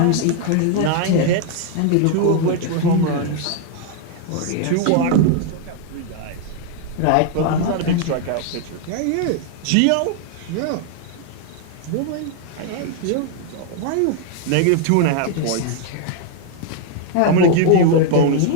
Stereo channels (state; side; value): different; both; correlation 0.00